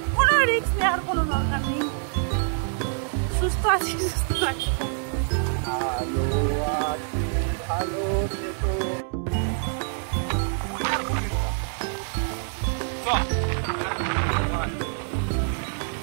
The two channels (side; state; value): left; silent; 57 dB below the other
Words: কোনো রিস্ক নেওয়ার কোনো দরকার নেই। সুস্থ আছি, সুস্থ আছি। ভালো থেকো।